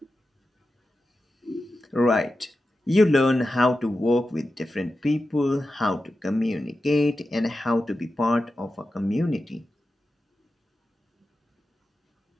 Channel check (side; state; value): both; normal; correlation 0.92